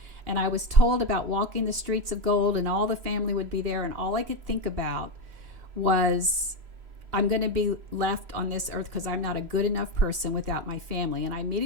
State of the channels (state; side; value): late; left; 3.0 ms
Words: And I was told about walking the streets of gold, and all the family would be there. And all I could think about was, I'm going to be left on this earth because I'm not a good enough person without my family. And I